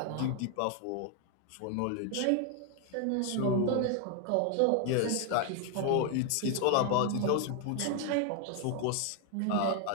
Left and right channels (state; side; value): different; both; correlation 0.00